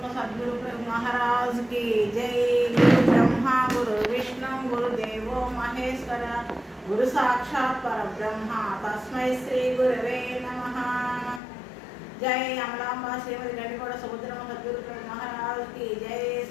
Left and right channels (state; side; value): drops out; right; at 11.4 s